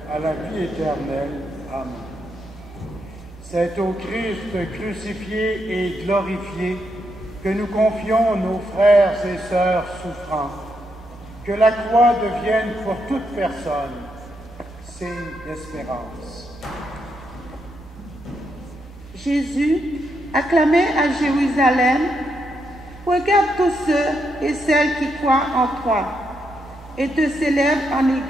à la vie éternelle. Amen. C'est au Christ crucifié et glorifié que nous confions nos frères et sœurs souffrants. Que la croix devienne pour toute personne signe d'espérance. Jésus, acclamé à Jérusalem, regarde tous ceux et celles qui croient en toi et te célèbrent en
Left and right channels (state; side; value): normal; both; correlation 0.80